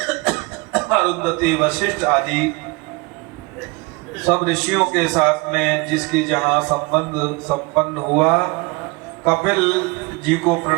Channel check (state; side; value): quieter; left; 25.2 dB